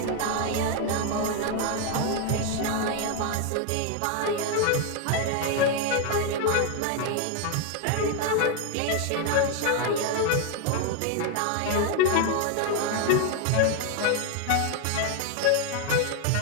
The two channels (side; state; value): both; different; correlation 0.01